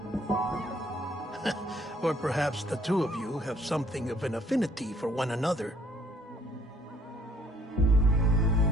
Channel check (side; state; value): both; normal; correlation 0.62